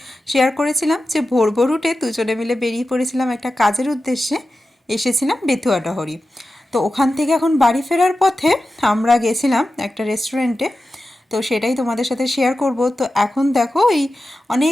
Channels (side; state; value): both; normal; correlation 0.93